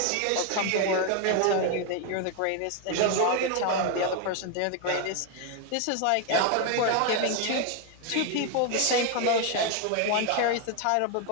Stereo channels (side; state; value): both; different; correlation 0.01